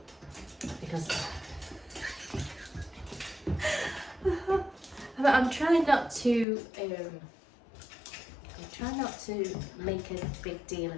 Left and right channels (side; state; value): right; drops out; at 6.5 s